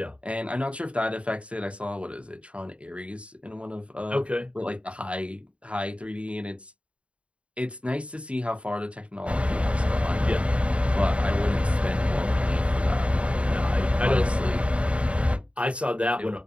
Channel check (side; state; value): left; late; 0.061 ms